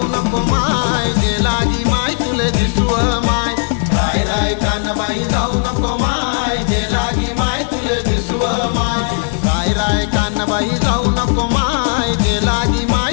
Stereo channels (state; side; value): silent; right; digital silence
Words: नको माय, जे लागी माय तुले दिसव माय. राय राय कानबाई जाऊ नको माय, जे लागी माय तुले दिसव माय. राय राय कानबाई जाऊ नको माय, जे लागी माय